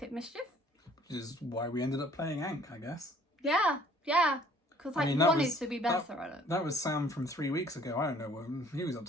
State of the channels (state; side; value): normal; both; correlation 0.56